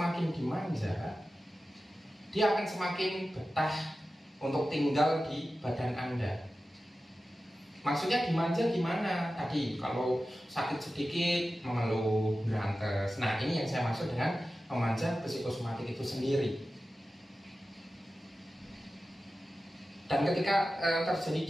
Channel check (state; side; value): normal; both; correlation 0.94